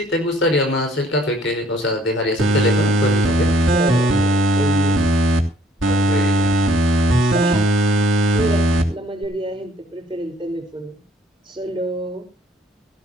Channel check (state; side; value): normal; both; correlation 0.61